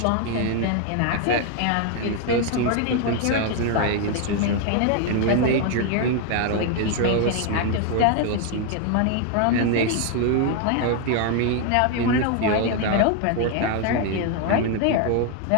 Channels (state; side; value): different; both; correlation 0.01